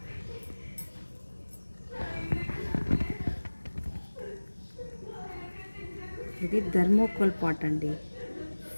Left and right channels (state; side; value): inverted; both; correlation -1.00